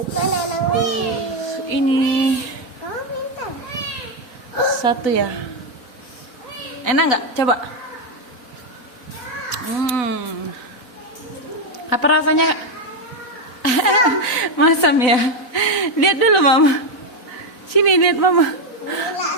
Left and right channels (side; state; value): right; late; 4.0 ms